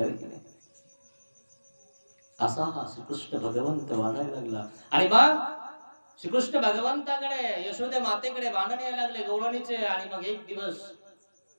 की नाही? असा हा श्रीकृष्ण भगवंत वाढायला लागला. आणि मग श्रीकृष्ण भगवंताकडे यशोदे मातेकडे भांडण यायला लागले गवळणीचे. आणि मग एक दिवस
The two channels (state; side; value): inverted; both; correlation -1.00